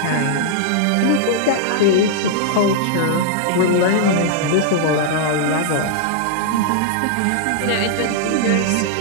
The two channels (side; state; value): both; different; correlation -0.01